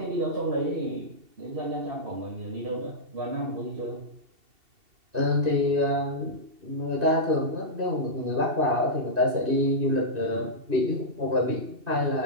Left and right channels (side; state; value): left; late; 2.6 ms